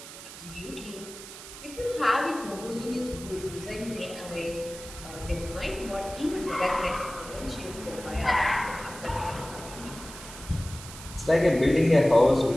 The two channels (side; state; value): right; noise; hiss, 14 dB below the sound